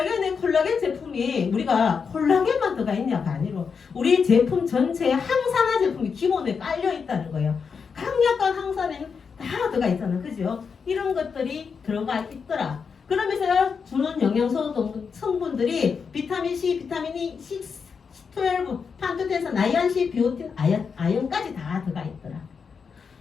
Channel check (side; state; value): right; quieter; 5.9 dB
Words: 제품이 우리가 콜라겐만 들어가 있냐가 아니고 우리 제품 전체에 항산화 제품이 기본에 깔려 있다는 거예요. 강력한 항산화는 다 들어가 있잖아. 그죠? 이런 것들이 들어가 있더라. 그러면서 주는 영양소 성분들이 비타민C, 비타민 E, 12, 판토텐산, 나이안시, 비오틴, 아연까지 다 들어가 있더라.